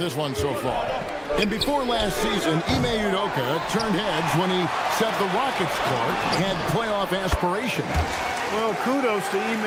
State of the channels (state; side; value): identical; both; correlation 1.00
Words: one so far. And before last season, Ime Udoka turned heads when he said the Rockets Clark had playoff aspirations. Well, kudos to